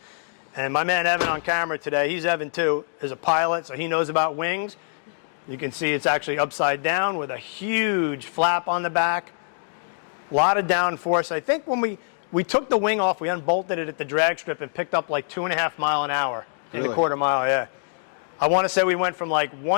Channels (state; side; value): silent; right; digital silence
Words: And my man Evan on camera today, he's Evan too, is a pilot, so he knows about wings. You can see it's actually upside down with a huge flap on the back. A lot of downforce. I think when we took the wing off, we unbolted it at the drag strip and picked up like 2.5 miles an hour. Really? In a quarter mile, yeah. I want to say we went from like